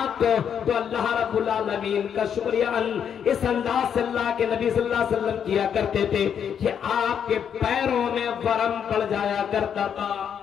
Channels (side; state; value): right; quieter; 8.1 dB